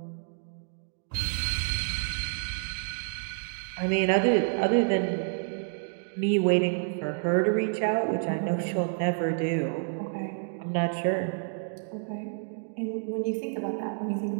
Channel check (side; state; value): left; silent; digital silence